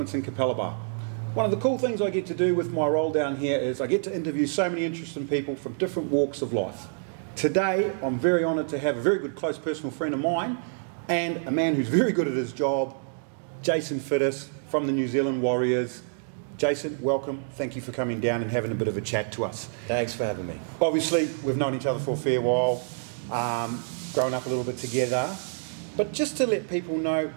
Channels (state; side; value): silent; left; digital silence